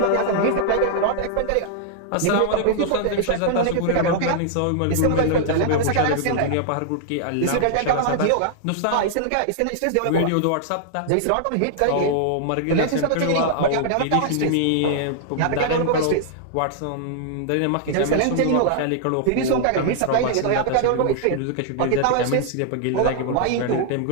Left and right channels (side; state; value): both; different; correlation -0.01